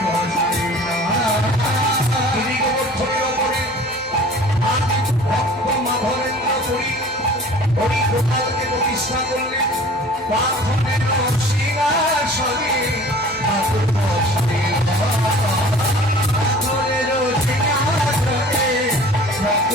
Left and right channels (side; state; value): both; normal; correlation 0.46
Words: বসাই ভক্ত মাধবেন্দ্র করি হরি গোপালকে প্রতিষ্ঠা করলেন পাথরের সিংহাসনে। ঠাকুর বসাই পাথরের সিংহাসনে,